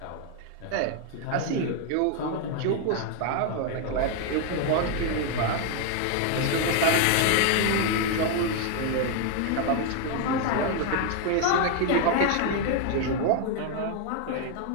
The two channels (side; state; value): both; different; correlation 0.00